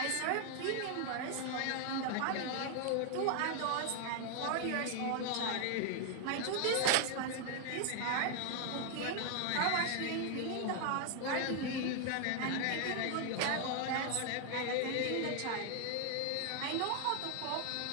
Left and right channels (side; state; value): both; different; correlation 0.00